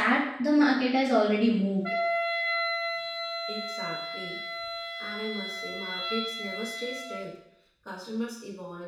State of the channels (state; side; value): identical; both; correlation 1.00